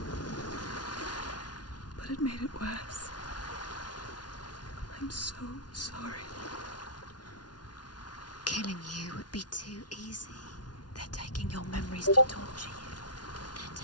But it made it worse. I'm so sorry. Killing you would be too easy. They're taking your memories to torture you. They're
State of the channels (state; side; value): late; right; 0.69 ms